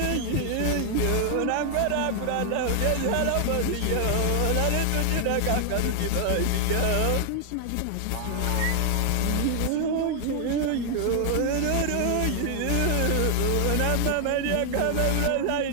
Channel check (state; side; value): different; both; correlation 0.00